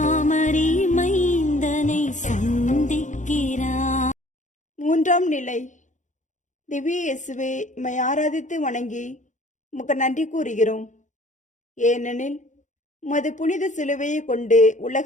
மைந்தனை சந்திக்கிறார். மூன்றாம் நிலை. திவ்ய இயேசுவே, உம்மை ஆராதித்து வணங்கி உமக்கு நன்றி கூறுகிறோம். ஏனெனில் உமது புனித சிலுவையை கொண்டு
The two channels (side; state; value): right; late; 0.36 ms